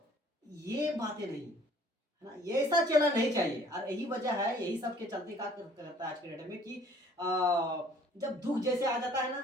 ये बातें नहीं, है ना। ये ऐसा चेला नहीं चाहिए। और यही वजह है, यही सब के चलते क्या करता है आज के डेट में कि जब दुख जैसे आ जाता है ना,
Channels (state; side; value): normal; both; correlation 0.55